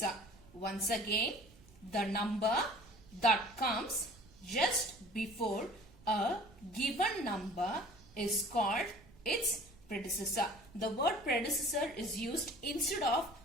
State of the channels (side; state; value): right; noise; rumble, 24 dB below the sound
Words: Once again, the number that comes just before a given number is called its predecessor. The word predecessor is used instead of